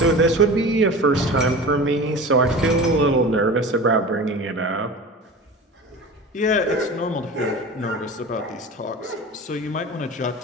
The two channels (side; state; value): both; normal; correlation 0.35